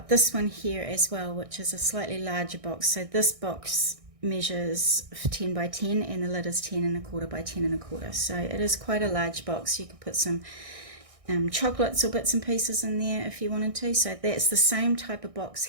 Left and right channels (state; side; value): late; left; 1.6 ms